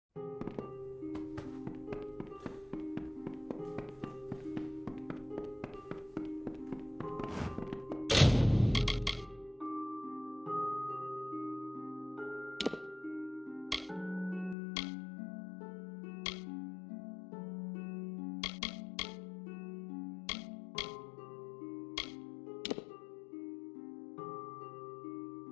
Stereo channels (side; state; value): right; drops out; at 14.6 s